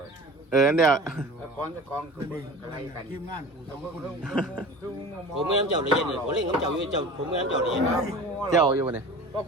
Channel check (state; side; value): normal; both; correlation 0.38